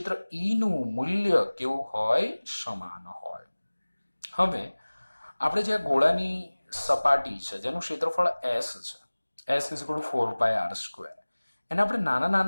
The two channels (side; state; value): both; inverted; correlation -1.00